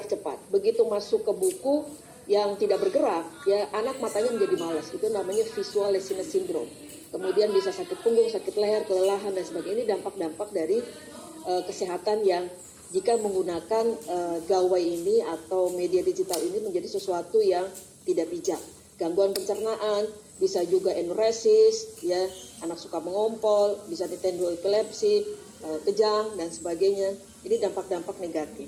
cepat, begitu masuk ke buku yang tidak bergerak, ya, anak matanya menjadi malas. Itu namanya visual laziness syndrome. Kemudian bisa sakit punggung, sakit leher, kelelahan, dan sebagainya. Ini dampak-dampak dari kesehatan yang jika menggunakan gawai ini atau media digital ini menjadi sesuatu yang tidak bijak. Gangguan pencernaan, bisa juga enuresis, ya, anak suka mengompol, bisa ditendo epilepsi, kejang, dan sebagainya. Ini dampak-dampak negatif.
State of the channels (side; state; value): both; identical; correlation 1.00